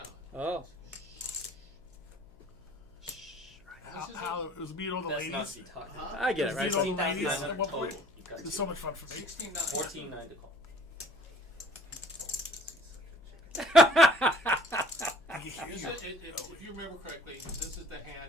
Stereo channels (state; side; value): noise; left; hum, 29 dB below the sound